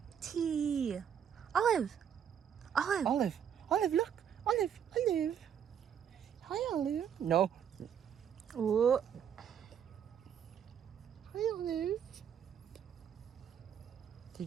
T. Olive. Olive. Olive. Olive, look. Olive. Olive. Hi, Olive. No. Ooh. Hi, Olive.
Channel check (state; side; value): quieter; left; 8.5 dB